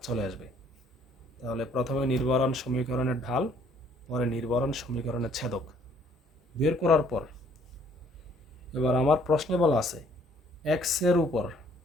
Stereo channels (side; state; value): both; normal; correlation 0.61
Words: চলে আসবে। তাহলে প্রথমে নির্ভরণ সমীকরণের ঢাল, পরে নির্ভরণ সমীকরণের ছেদক বের করার পর এবার আমার প্রশ্নে বলা আছে এক্স এর উপর